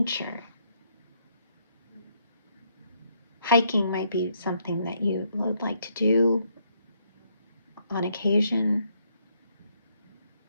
Hiking might be something that you would like to do on occasion.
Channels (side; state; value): both; inverted; correlation -0.72